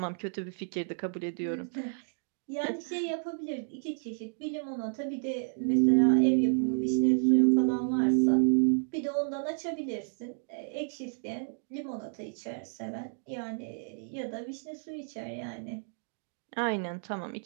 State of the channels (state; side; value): silent; left; digital silence